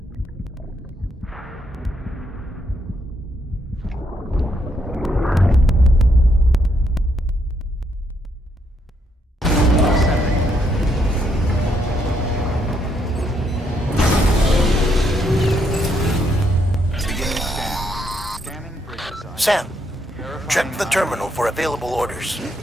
Sam, check the terminal for available orders.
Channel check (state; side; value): normal; both; correlation 0.75